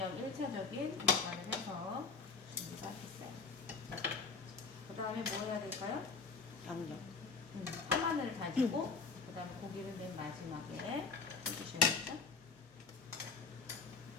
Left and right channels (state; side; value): quieter; right; 4.7 dB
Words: 1차적인 간을 해서 준비가 됐어요. 그 다음에 뭐 해야 될까요? 양념. 파마늘을 다지고 그 다음에 고기를 맨 마지막에 해주셔야겠죠?